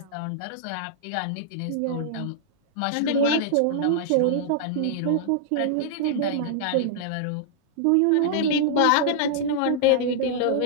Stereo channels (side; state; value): both; different; correlation -0.01